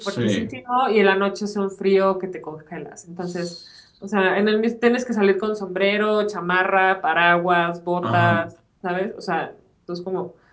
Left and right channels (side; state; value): both; identical; correlation 1.00